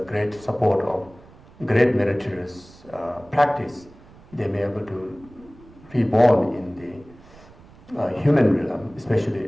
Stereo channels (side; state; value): right; noise; rumble, 23 dB below the sound